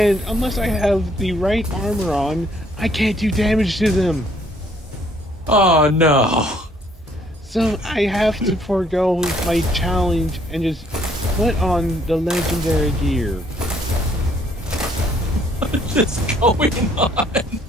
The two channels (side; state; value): both; normal; correlation 0.65